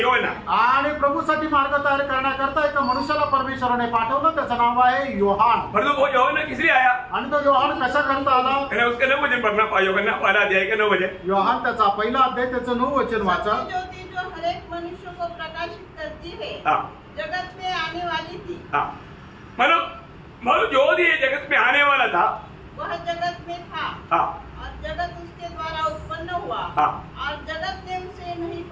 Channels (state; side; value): identical; both; correlation 1.00